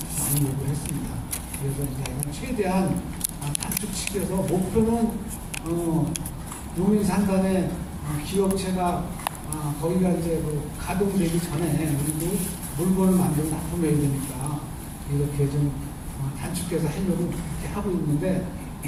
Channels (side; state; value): both; identical; correlation 1.00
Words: 많이 요구를 했습니다. 그래서 이제 최대한 단축시켜서 목표는 용인 산단의 기업체가 거기가 이제 가동되기 전에 우리도 물건을 만들어 납품해야 되니까 이렇게 좀 단축해서 하려고 이렇게 하고 있는데